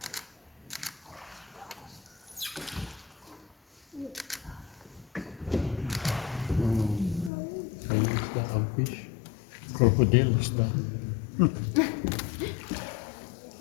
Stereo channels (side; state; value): right; drops out; at 7.3 s